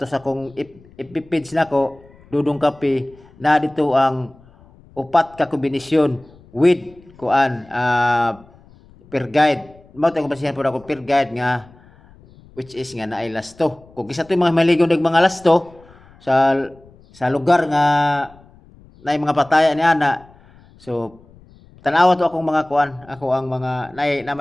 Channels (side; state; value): left; noise; rumble, 26 dB below the sound